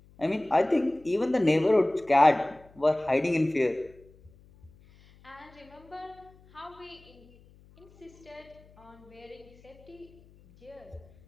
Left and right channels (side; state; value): left; noise; hum, 26 dB below the sound